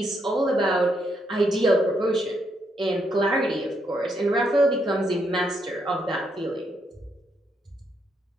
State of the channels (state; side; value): normal; both; correlation 0.77